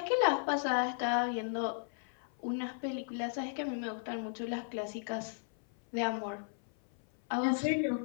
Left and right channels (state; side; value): silent; right; 54 dB below the other